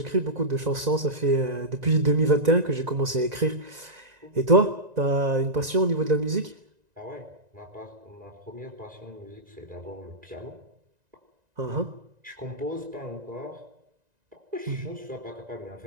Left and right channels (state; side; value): late; left; 1.9 ms